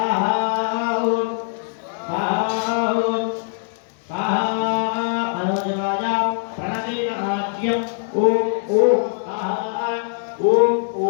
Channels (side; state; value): right; silent; digital silence